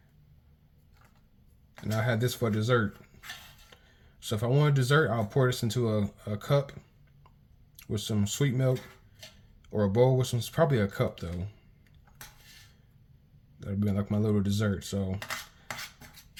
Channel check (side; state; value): both; identical; correlation 1.00